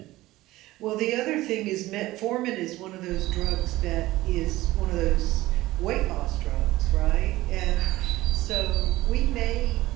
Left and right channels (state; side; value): quieter; left; 17.4 dB